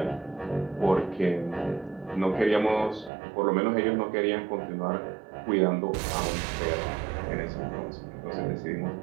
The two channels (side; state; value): left; drops out; at 3.1 s